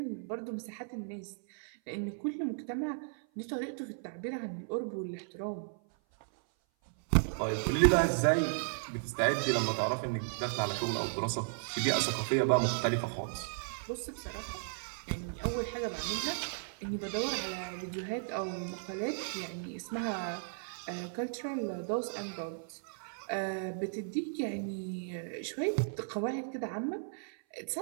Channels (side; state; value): left; silent; 54 dB below the other